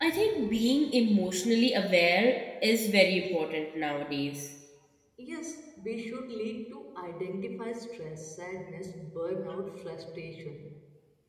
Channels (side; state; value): both; identical; correlation 1.00